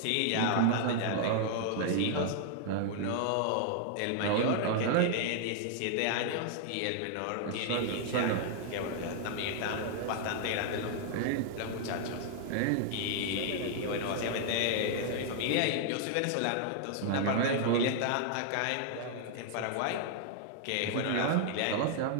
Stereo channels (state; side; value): different; both; correlation 0.00